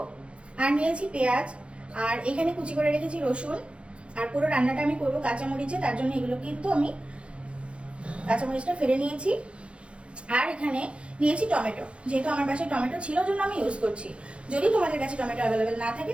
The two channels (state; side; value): late; left; 0.059 ms